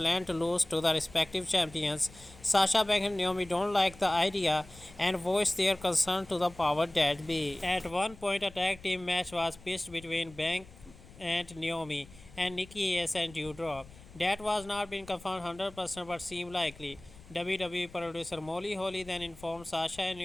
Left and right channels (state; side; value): noise; left; rumble, 21 dB below the sound